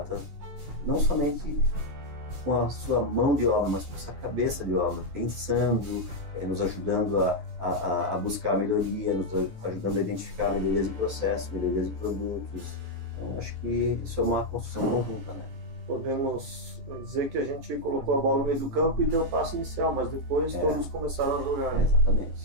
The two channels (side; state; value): left; late; 12 ms